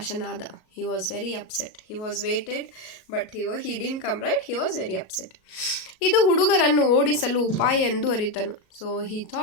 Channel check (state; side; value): late; right; 37 ms